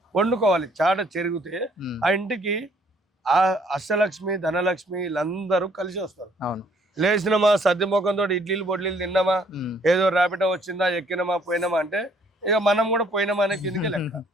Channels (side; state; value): both; normal; correlation 0.63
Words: వండుకోవాలి. చాట చెరిగితే ఆ ఇంటికి ఆ అష్టలక్ష్మి ధనలక్ష్మి వీళ్ళందరూ కలిసి వస్తారు. లేచినమా సద్ది ముఖంతో ఇడ్లీలు బొడ్లీలు తిన్నామా, ఏదో ర్యాపిడో వచ్చిందా ఎక్కినమా పోయినామా అంటే ఇక మనం కూడా పోయినామా అనే కిందకి లెక్క.